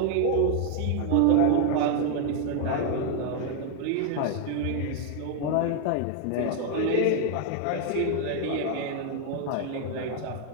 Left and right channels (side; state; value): both; different; correlation 0.01